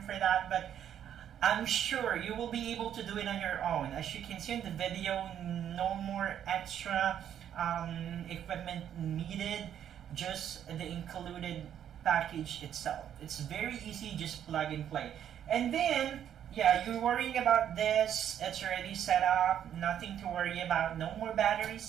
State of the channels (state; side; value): quieter; left; 9.8 dB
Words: for that, but I'm sure you will be able to do it on your own. As you can see in the video, no more extra equipment needed, just the included package itself. It's very easy, just plug and play. And then, yeah, you're worrying about this, it's already set up, nothing to worry about, no more